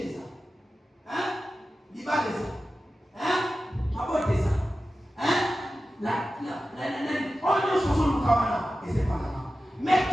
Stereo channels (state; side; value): normal; both; correlation 0.94